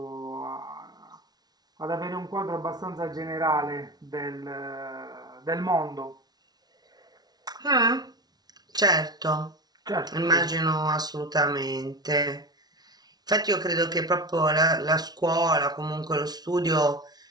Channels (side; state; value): left; late; 0.19 ms